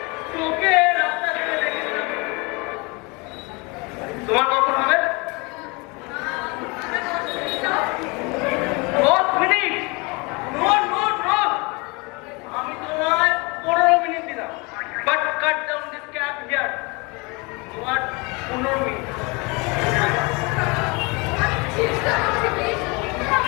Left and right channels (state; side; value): quieter; right; 28.1 dB